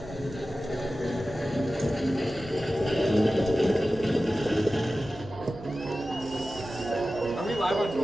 Are we live on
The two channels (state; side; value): noise; right; hum, 19 dB below the sound